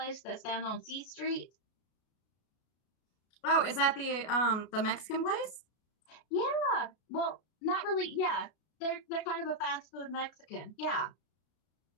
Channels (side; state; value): right; late; 33 ms